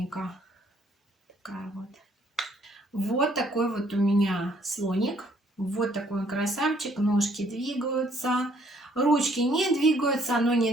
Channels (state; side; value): normal; both; correlation 0.64